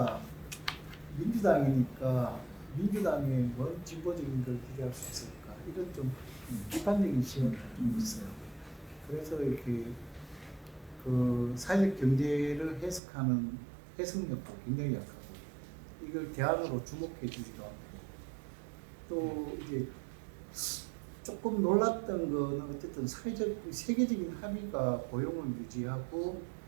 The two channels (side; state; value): left; drops out; at 13.0 s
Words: 민주당이니까 민주당의 뭔 진보적인 걸 기대할 수 있을까 이런 좀 비판적인 시각이 좀 있어요. 그래서 이렇게 그 사회적 경제를 해석하는 해석력도 굉장히 약하고 이걸 대안으로 주목해 주기도 하고 또 이제 조금 놀랐던 거는 어쨌든 사회적 세계적인 합의가 고용을 유지하고